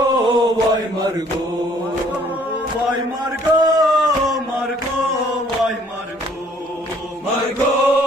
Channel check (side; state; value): both; normal; correlation 0.60